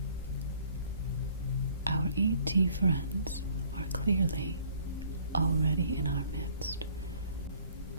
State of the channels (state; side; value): inverted; both; correlation -0.58